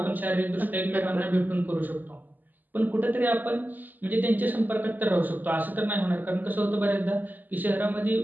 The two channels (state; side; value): late; left; 0.085 ms